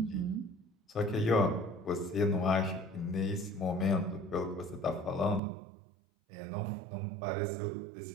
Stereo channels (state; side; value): drops out; left; at 5.4 s